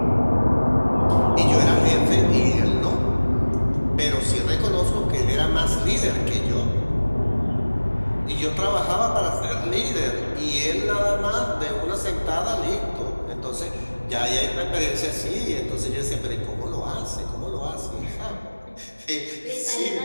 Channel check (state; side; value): inverted; both; correlation -1.00